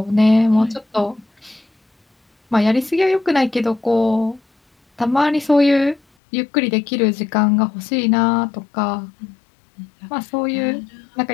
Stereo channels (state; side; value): drops out; right; at 6.0 s